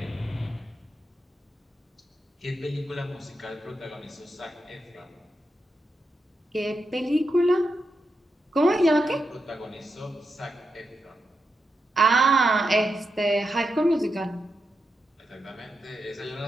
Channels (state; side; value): normal; both; correlation 0.86